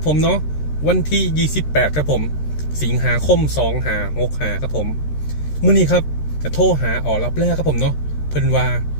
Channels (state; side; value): late; right; 13 ms